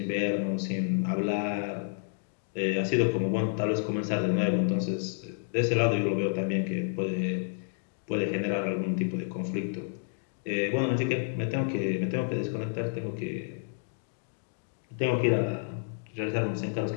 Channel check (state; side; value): silent; right; digital silence